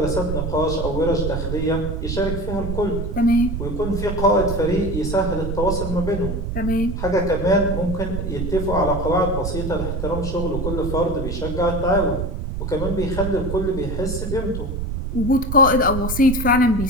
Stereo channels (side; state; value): right; noise; rumble, 4 dB below the sound